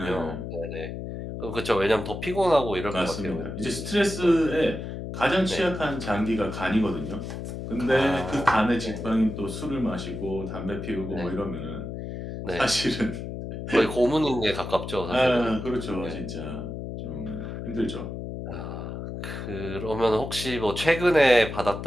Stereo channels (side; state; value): left; noise; hum, 7 dB below the sound